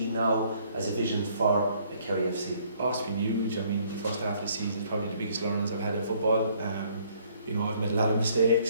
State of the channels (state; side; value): inverted; both; correlation -0.63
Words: now as a vision for a Kerry FC? Oh, it's been huge. I mean, the first half of the season is probably the biggest learnings I've had in football. You know, I've made a lot of